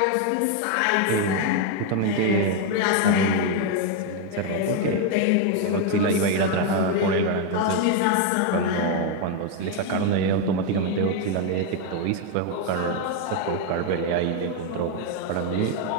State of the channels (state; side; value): different; both; correlation 0.01